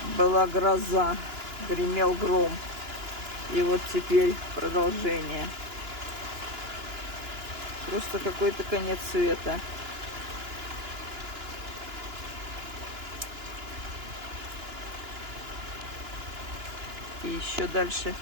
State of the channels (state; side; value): late; left; 2.9 ms